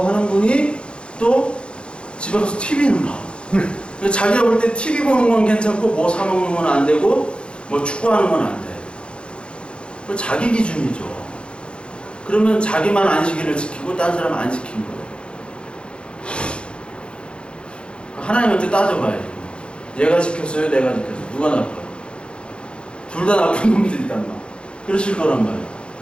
하는 분이 또 집에 가서 TV는 봐. 자기가 볼 때 TV 보는 건 괜찮고 뭐 사먹는 건 안 되고 뭐 축구하는 건 안 돼. 그 자기 기준이죠. 그러면 자기만 안식일을 지키고 딴 사람은 안 지킨 거예요. 하나님한테 따져봐야지. 얘가 지켰어요? 내가 지켰어요? 누가 나빠요? 둘 다 나쁜 놈들이단 말. 그러실 거란 말이에요.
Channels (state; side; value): late; right; 0.056 ms